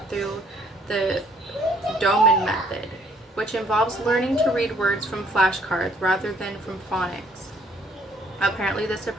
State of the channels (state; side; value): normal; both; correlation 0.63